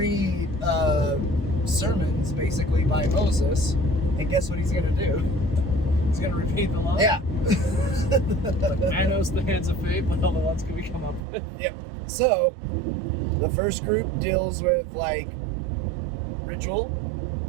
sermons, basically, by Moses. And guess what he's going to do? He's going to repeat the law? Yeah. Man knows the hands of fate, but all the ones can we come up with. Yep. So the first group deals with like ritual,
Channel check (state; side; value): drops out; left; at 11.2 s